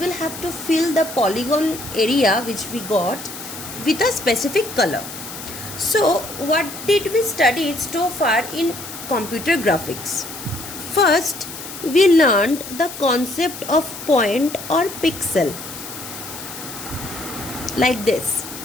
have to fill the polygon area which we got with a specific color. So, what did we study so far in computer graphics? First, we learned the concept of point or pixel, like this,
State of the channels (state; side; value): noise; left; hiss, 11 dB below the sound